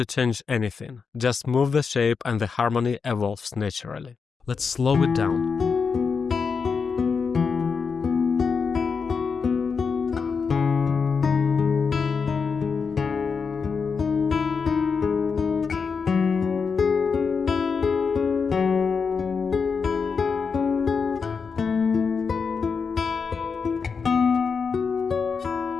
change anything. Just move the shape and the harmony evolves naturally. Let's slow it down.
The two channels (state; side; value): quieter; right; 5.5 dB